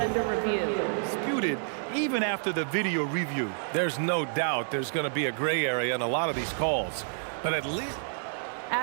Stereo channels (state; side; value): silent; left; digital silence